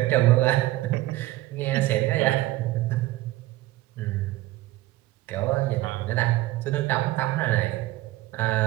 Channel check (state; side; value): quieter; left; 17.2 dB